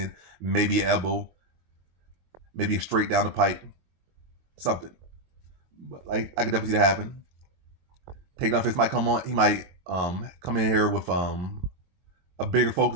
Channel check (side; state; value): left; late; 23 ms